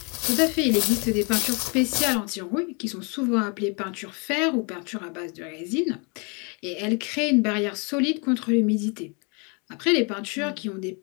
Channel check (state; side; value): quieter; right; 33.7 dB